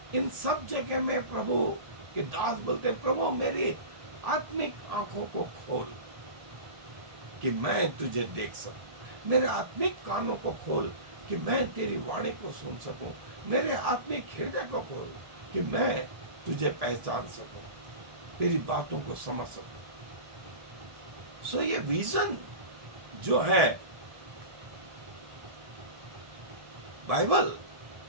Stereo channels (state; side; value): late; left; 1.7 ms